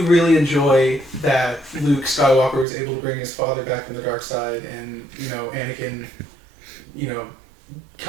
really enjoy that Luke Skywalker was able to bring his father back from the dark side, and Anakin,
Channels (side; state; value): left; drops out; at 2.7 s